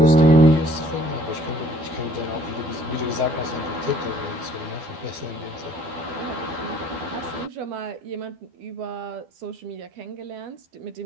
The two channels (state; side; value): late; left; 12 ms